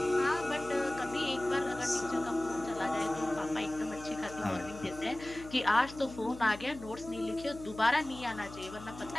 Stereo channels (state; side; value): noise; left; hum, 15 dB below the sound